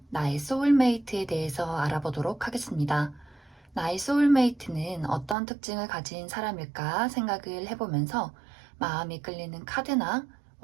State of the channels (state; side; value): drops out; left; at 5.4 s